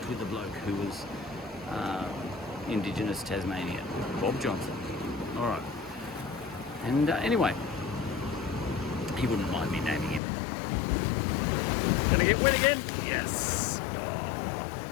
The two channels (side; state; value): right; drops out; at 10.2 s